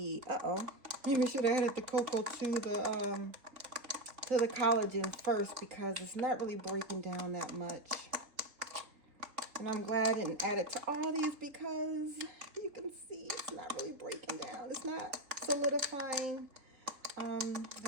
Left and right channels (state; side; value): late; left; 3.7 ms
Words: maybe I should have added the cocoa to the collagen first, because it's not really breaking down that much. And I'm glad I didn't add it to all these, because you can see it's not really breaking down. It's not solidifying. I